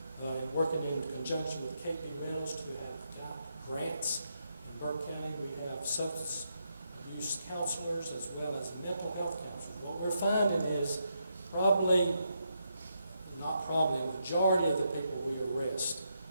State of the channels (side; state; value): both; inverted; correlation -0.81